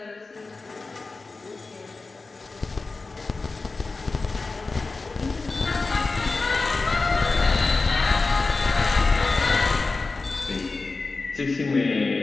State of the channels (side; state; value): right; quieter; 3.8 dB